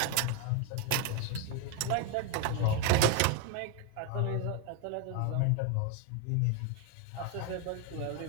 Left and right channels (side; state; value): both; different; correlation 0.01